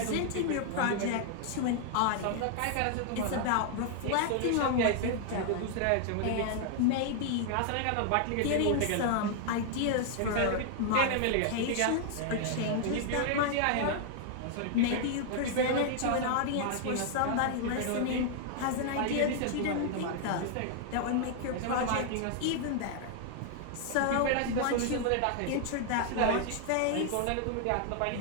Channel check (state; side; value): different; both; correlation 0.00